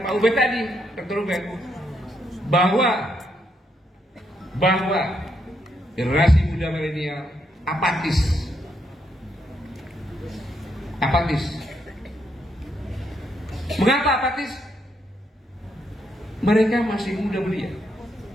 Pak Ubed tadi, Dr. Ubed, bahwa generasi muda milenial apatis. Mengapa apatis? Mereka masih muda belia.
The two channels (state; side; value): normal; both; correlation 0.77